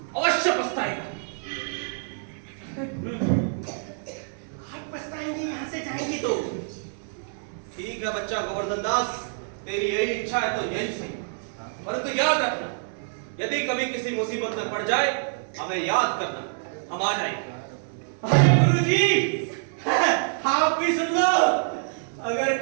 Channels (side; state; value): left; silent; 61 dB below the other